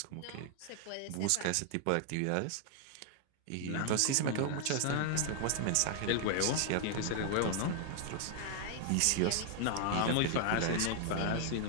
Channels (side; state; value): both; different; correlation 0.00